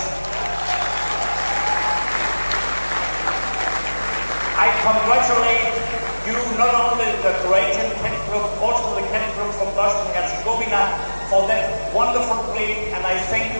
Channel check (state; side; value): inverted; both; correlation -1.00